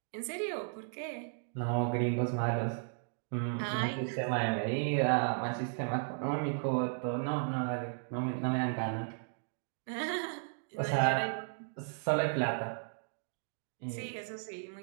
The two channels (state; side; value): silent; left; digital silence